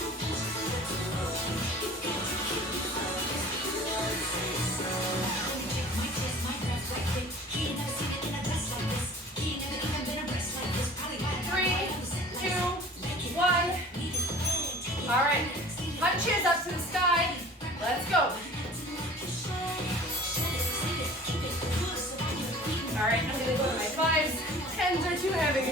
All right, punches up to the sky. Let's go. All right, I'm gonna go to my 5s. 10s are too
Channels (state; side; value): normal; both; correlation 0.44